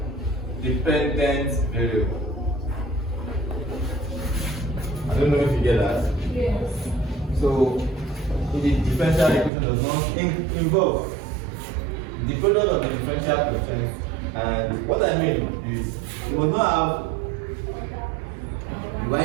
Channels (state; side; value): drops out; left; at 9.5 s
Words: Dependent variable. I don't know if you get that. Yes. So the differential equation does not involve the product of the differential quotient, and what I mean is you will not have